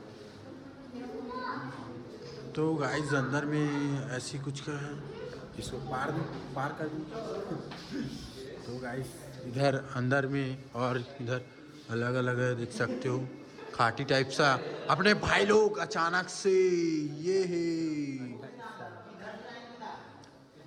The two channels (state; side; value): identical; both; correlation 1.00